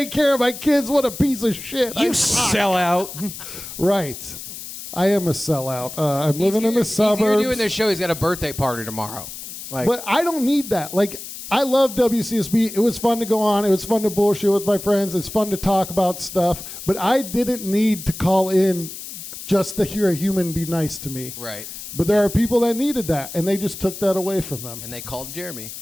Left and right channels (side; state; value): left; noise; hiss, 11 dB below the sound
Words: care of my kids. What a piece of shit. You sell out. Right. I am a sellout. I'm living in the He's here suburbs. doing this show. He's got a birthday party tomorrow. Like, But I don't need that. Like, I love WCSB. It was fun to go on. It was fun to bullshit with my friends. It's fun to talk about stuff. But I didn't need to call in just to hear a human be nice to me. right. But there are people that needed that, and they just took that away from them. And they called Jeremy